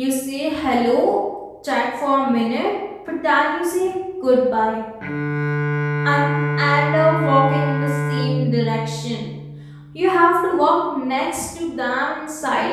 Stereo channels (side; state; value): both; identical; correlation 1.00